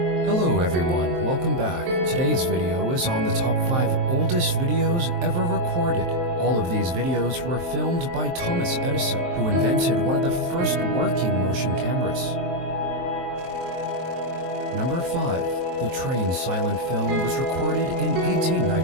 Hello everyone, welcome back. Today's video is on the top 5 oldest videos ever recorded. All of these videos were filmed by Thomas Edison, who invented one of the first working motion cameras. Number 5. The train silent film was recorded in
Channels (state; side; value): late; left; 23 ms